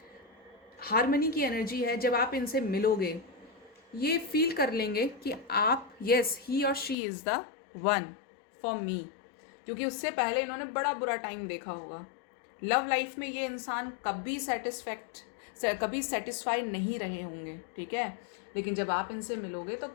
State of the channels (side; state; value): right; drops out; at 7.0 s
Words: हार्मनी की एनर्जी है, जब आप इनसे मिलोगे ये फील कर लेंगे कि आप, यस ही और she is the one for me, क्योंकि उससे पहले इन्होंने बड़ा बुरा टाइम देखा होगा। लव लाइफ में ये इंसान कभी सेटिस्फाई नहीं रहे होंगे। ठीक है, लेकिन जब आप इनसे मिलोगे तो